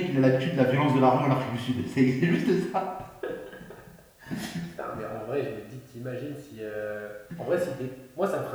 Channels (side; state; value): both; identical; correlation 1.00